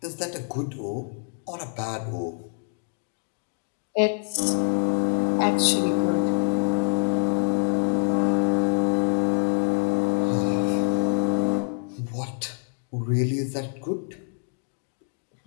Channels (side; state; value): right; silent; 61 dB below the other